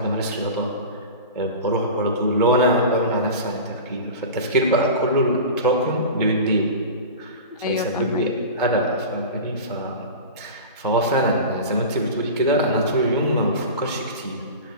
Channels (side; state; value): both; inverted; correlation -0.31